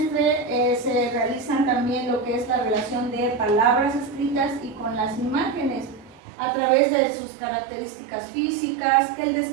se realizan también lo que es la relación de palabras escritas y con las imágenes, a través de sus características físicas, que él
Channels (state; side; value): drops out; left; at 6.2 s